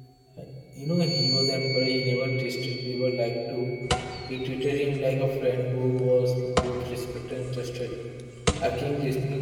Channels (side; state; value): both; identical; correlation 1.00